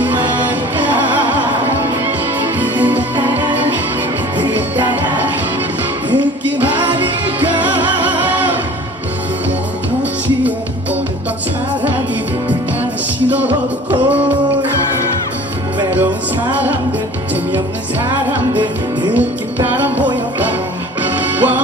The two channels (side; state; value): both; normal; correlation 0.45